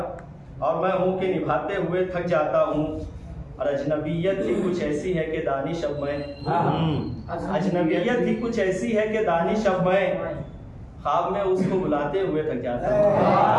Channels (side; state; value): both; identical; correlation 1.00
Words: और मैं हूँ के निभाते हुए थक जाता हूँ। और अजनबियत ही कुछ ऐसी है कि दानिश अब मैं, अजनबियत ही कुछ ऐसी है कि दानिश अब मैं, ख्वाब में उसको बुलाते हुए थक जाता हूँ।